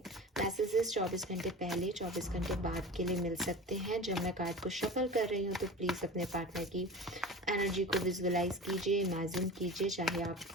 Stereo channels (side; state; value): both; normal; correlation 0.35